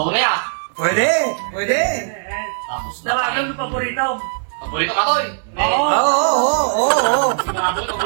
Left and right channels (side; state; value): left; silent; digital silence